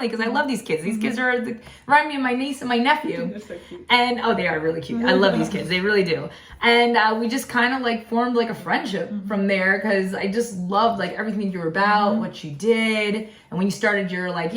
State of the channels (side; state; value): both; identical; correlation 1.00